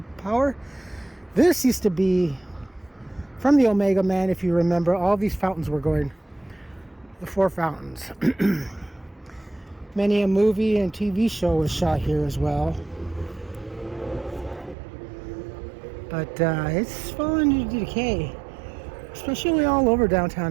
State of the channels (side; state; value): left; drops out; at 14.8 s